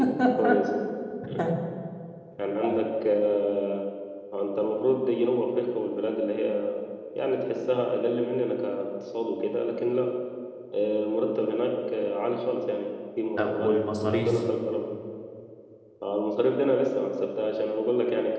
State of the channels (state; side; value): identical; both; correlation 1.00